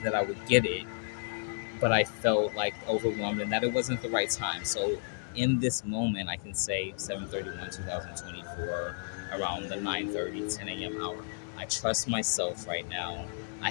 that I would get it, but I felt like overwhelmed and that it wasn't the right time. So in this moment, I can say 7:31, 2024, around the 9:30, 10 a.m. hour. I trust myself right now. I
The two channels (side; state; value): right; silent; 56 dB below the other